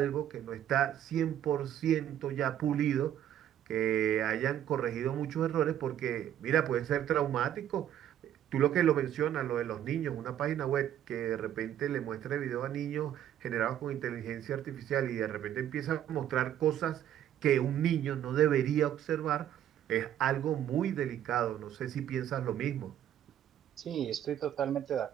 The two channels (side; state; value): left; quieter; 10.9 dB